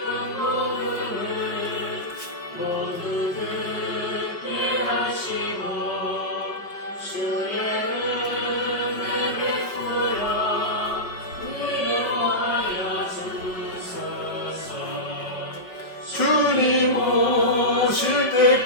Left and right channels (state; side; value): late; right; 5.3 ms